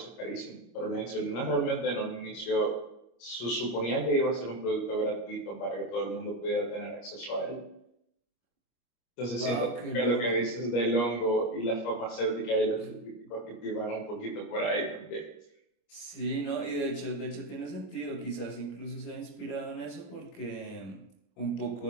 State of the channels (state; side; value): late; right; 25 ms